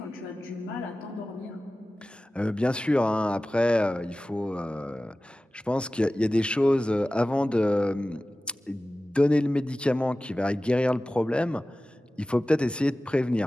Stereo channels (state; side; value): normal; both; correlation 0.96